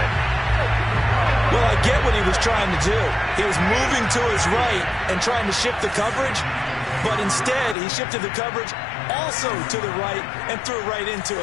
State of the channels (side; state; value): right; drops out; at 7.8 s